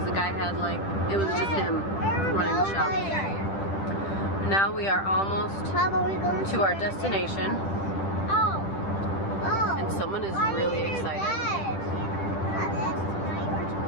the guy had like, it was just him running the shop. Now we are almost to our destination, and someone is really excited.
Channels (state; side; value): late; right; 10 ms